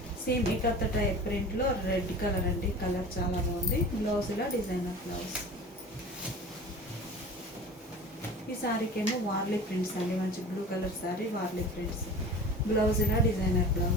same ikat type ప్రింట్లో రెడ్ కలర్ అండి, కలర్ చాలా బాగుంది. బ్లౌజ్ ఇలా డిజైనర్ బ్లౌజ్. ఈ సారీకి ఏమో వార్లీ ప్రింట్స్ అండి, మంచి blue colour sorry, Warli prints, blouse ఇలా డిజైనర్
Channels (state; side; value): normal; both; correlation 0.38